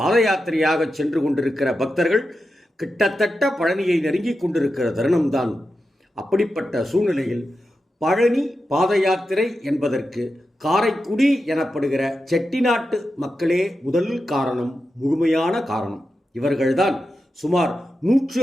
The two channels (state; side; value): normal; both; correlation 0.90